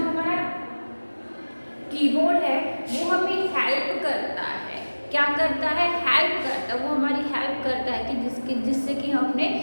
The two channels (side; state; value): both; inverted; correlation -1.00